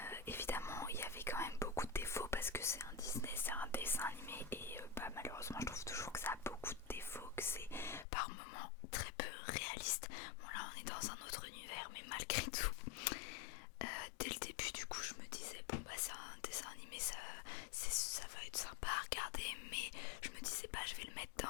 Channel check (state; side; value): drops out; right; at 8.1 s